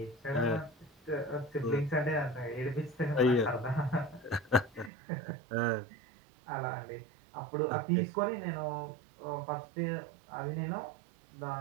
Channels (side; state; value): left; drops out; at 4.9 s